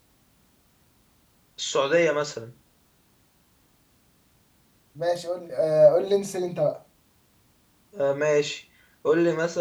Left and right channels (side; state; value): both; identical; correlation 1.00